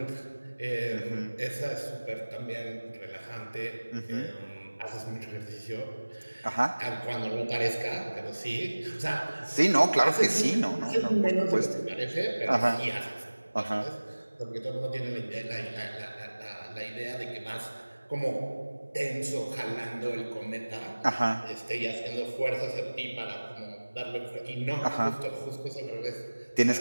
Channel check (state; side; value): inverted; both; correlation -1.00